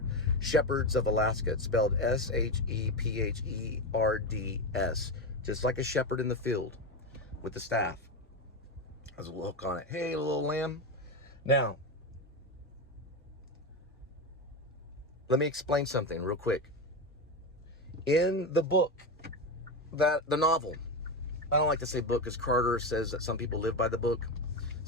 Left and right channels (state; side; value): normal; both; correlation 0.15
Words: Shepherds of Alaska. It's spelled S-H-E-P-H-E-R-D-S. Just like a shepherd in the field with the staff. Has a little hook on it. Hey, little lamb. Now, let me explain something real quick. In the book, the novel, I don't like to say book because Carter says that some people live by the book.